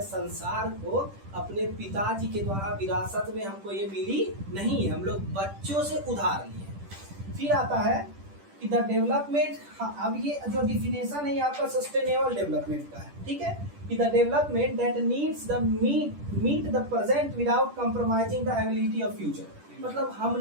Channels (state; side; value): late; left; 10 ms